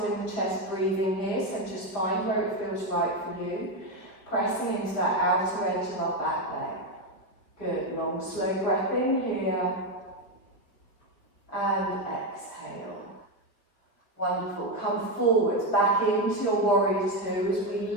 in the chest breathing here, so just find where it feels right for you. Pressing into that outer edge of our back leg. Good, long slow breath in here. And exhale. Wonderful. Come forwards, back into your warrior two as we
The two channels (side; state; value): right; late; 5.0 ms